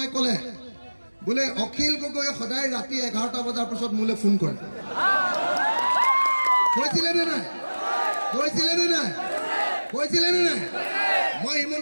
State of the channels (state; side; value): inverted; both; correlation -1.00